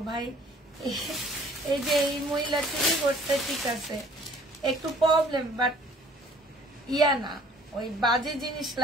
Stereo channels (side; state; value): both; normal; correlation 0.55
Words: ভাই, এই যে এই মহিলা চুরি করতে ঠিক আছে, একটু প্রবলেম, বাট ইয়া না, ওই বাজে জিনিস